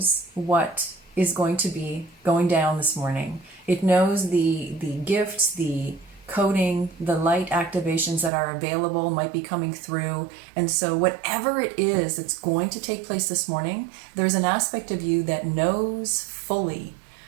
what is going to be going down this morning. It knows the gifts, the coding, the light activations that are available might be coming through. And so whatever it is that's going to take place this morning, there's an aspect of you that knows fully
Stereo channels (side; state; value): left; drops out; at 8.3 s